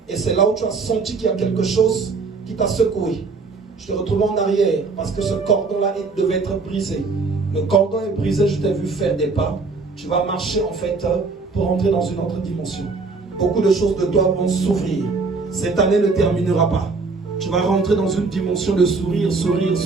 Et c'est là où tu as senti qu'il y a quelque chose qui t'a secoué. Je te retrouve en arrière parce que ce cordon-là devait être brisé. Le cordon est brisé, je t'ai vu faire des pas. Tu vas marcher en fait pour entrer dans une autre dimension. Beaucoup de choses de toi vont s'ouvrir. Cette année ne terminera pas. Tu vas rentrer dans une dimension de sourire, sourire,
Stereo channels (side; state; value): left; quieter; 4.2 dB